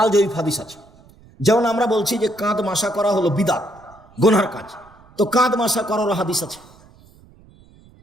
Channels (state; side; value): noise; right; rumble, 26 dB below the sound